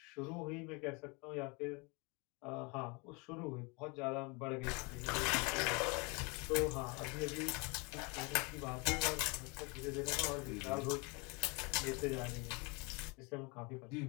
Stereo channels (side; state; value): right; quieter; 29.2 dB